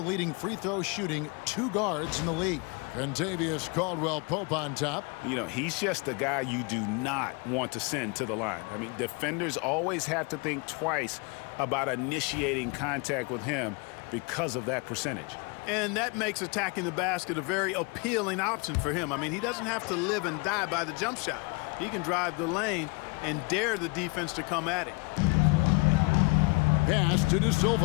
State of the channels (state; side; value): quieter; right; 29.2 dB